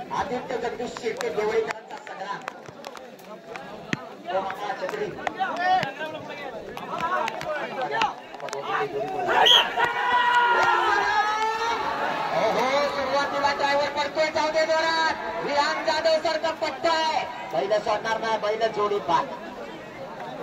आदित्य जगदीश शेट्टी देवळेकरांचा संग्राम. तो मामा छत्री सुरुवातीला ड्रायव्हर पडतोय. जाऊ दे जोरात. विहान जाधव सारखा पट्टा आहे. बैल सोडणार नाही. बैल जोडी पाठ.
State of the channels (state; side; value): identical; both; correlation 1.00